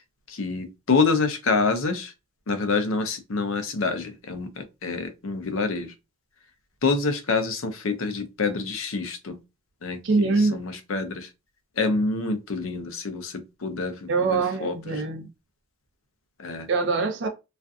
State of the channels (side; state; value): both; normal; correlation 0.19